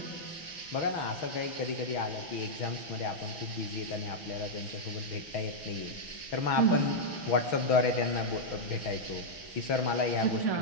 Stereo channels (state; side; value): late; right; 6.3 ms